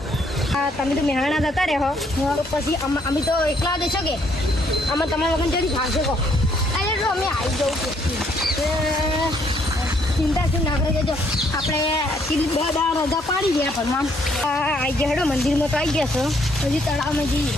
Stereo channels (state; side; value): normal; both; correlation 0.68